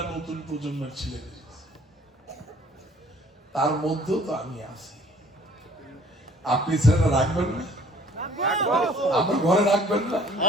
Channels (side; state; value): both; normal; correlation 0.56